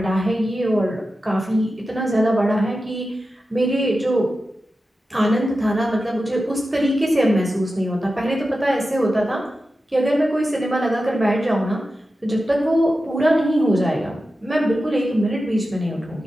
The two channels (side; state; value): both; normal; correlation 0.92